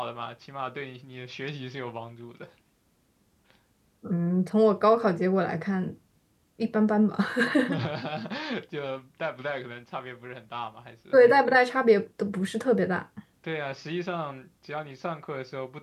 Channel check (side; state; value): both; identical; correlation 1.00